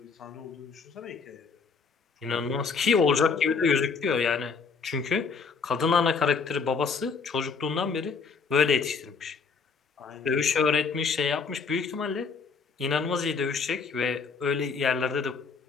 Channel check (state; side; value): quieter; right; 5.3 dB